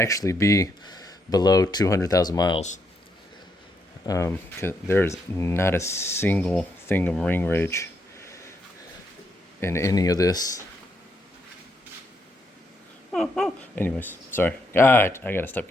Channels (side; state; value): both; normal; correlation 0.78